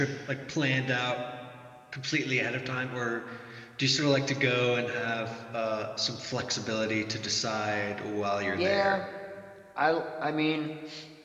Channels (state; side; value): identical; both; correlation 1.00